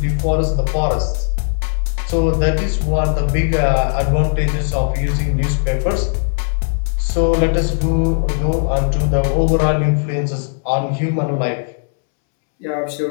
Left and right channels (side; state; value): right; silent; 68 dB below the other